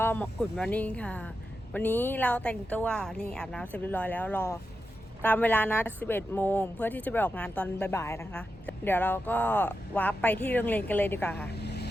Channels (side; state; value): both; normal; correlation 0.89